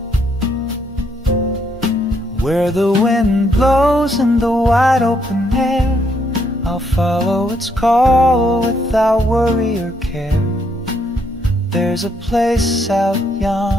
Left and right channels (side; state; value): both; normal; correlation 0.73